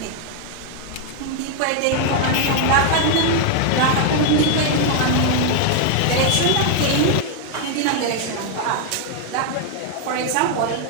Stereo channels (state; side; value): different; both; correlation 0.00